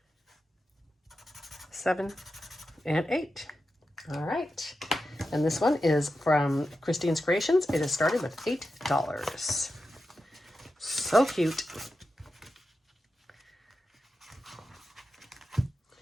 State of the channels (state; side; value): normal; both; correlation 0.90